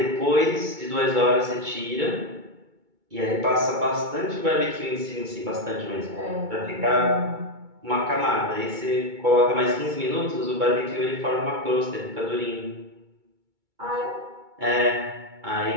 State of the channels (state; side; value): late; left; 2.2 ms